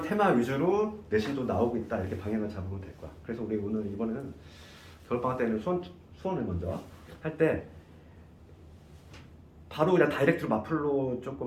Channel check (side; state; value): both; identical; correlation 1.00